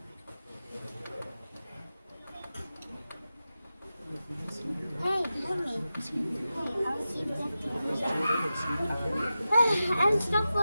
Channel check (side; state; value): both; inverted; correlation -0.93